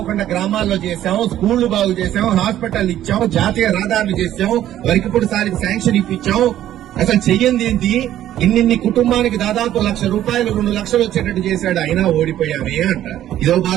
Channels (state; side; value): quieter; left; 12.3 dB